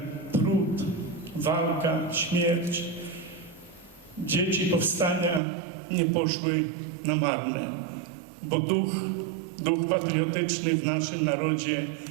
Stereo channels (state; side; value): drops out; left; at 5.4 s